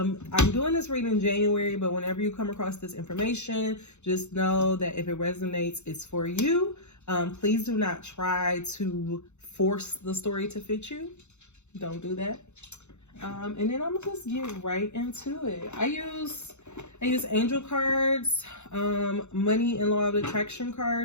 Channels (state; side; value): late; right; 0.82 ms